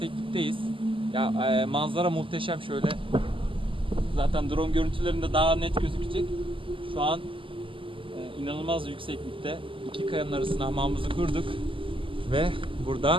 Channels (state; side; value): late; left; 0.25 ms